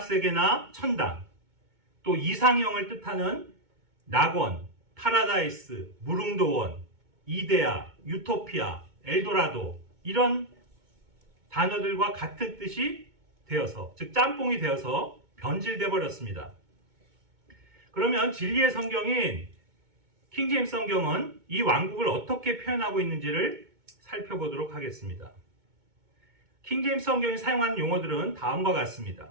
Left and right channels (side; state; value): left; late; 2.2 ms